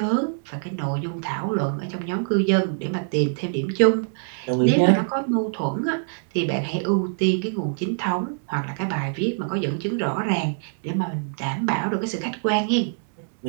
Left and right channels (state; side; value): silent; left; digital silence